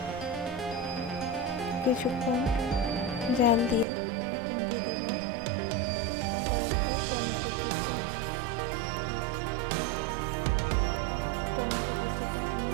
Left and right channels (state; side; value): drops out; left; at 3.9 s